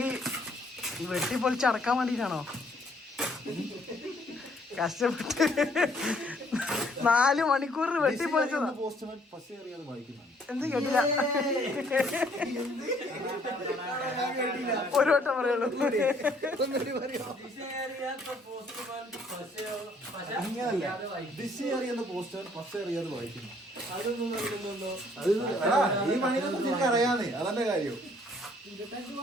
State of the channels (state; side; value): normal; both; correlation 0.63